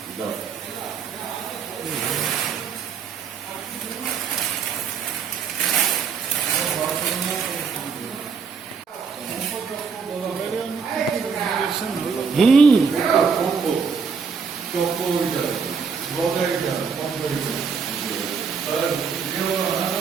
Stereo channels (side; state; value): left; quieter; 5.8 dB